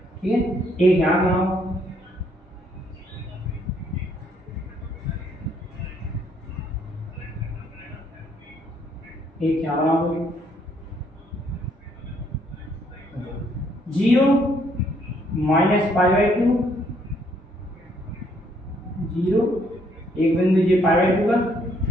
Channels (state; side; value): normal; both; correlation 0.68